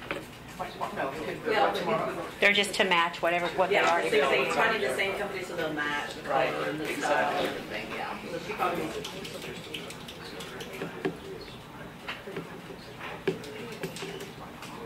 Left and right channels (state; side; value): identical; both; correlation 1.00